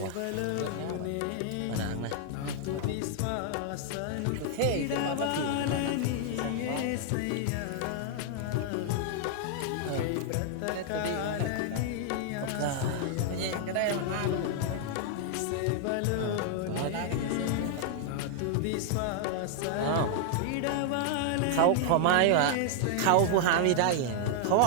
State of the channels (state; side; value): different; both; correlation 0.00